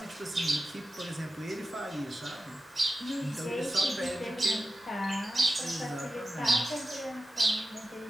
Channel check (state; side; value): normal; both; correlation 0.92